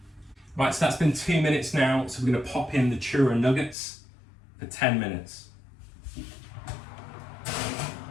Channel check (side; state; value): right; drops out; at 3.8 s